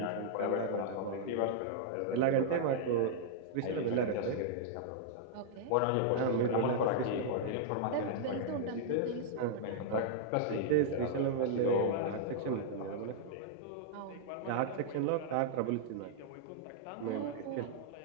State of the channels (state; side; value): different; both; correlation -0.01